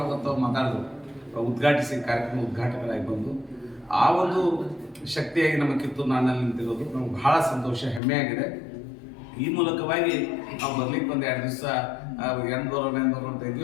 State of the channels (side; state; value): right; drops out; at 8.0 s